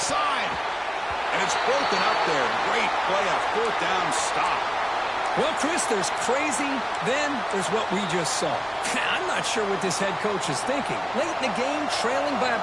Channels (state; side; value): identical; both; correlation 1.00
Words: And it's broken up there. Great play, a fourth down stop. Well, Chris, there's crazy, then there's what we just saw. I'm not sure what this head coach is thinking. Late in the game, trailing by